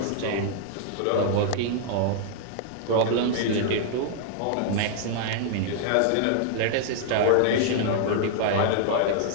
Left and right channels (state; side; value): different; both; correlation -0.01